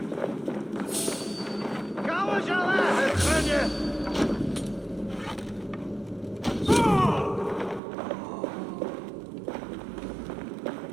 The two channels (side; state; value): left; drops out; at 7.8 s